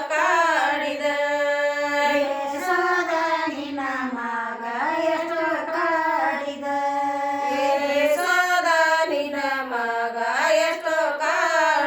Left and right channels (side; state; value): both; identical; correlation 1.00